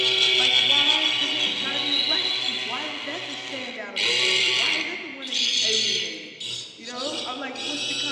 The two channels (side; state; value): both; identical; correlation 1.00